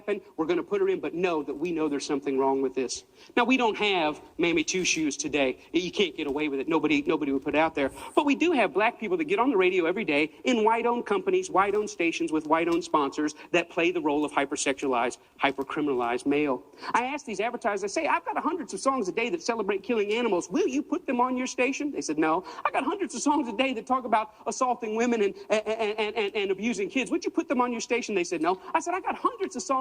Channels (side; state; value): both; identical; correlation 1.00